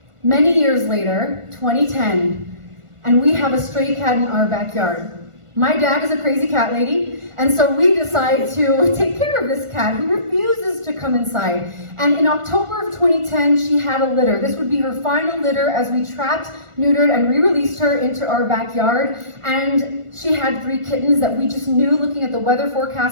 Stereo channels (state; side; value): late; left; 1.4 ms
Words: Many years later, 2010, and we have a stray cat in our backyard. My dad is a crazy cat lady, and so we decide to take care of this cat who refuses to come inside. And in October of 2010, she had a litter. This would be her final litter as we trapped, neutered, and re-released her into our backyard. And she had 3 kittens that we just knew, looking at the weather